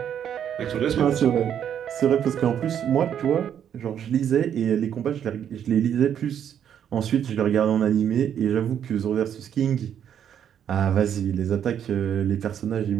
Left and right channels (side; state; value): left; quieter; 9.1 dB